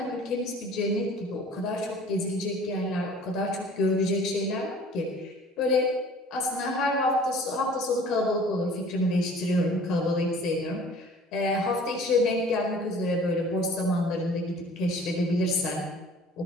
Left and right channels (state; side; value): normal; both; correlation 0.49